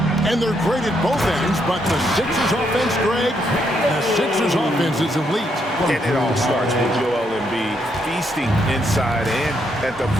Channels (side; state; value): both; normal; correlation 0.76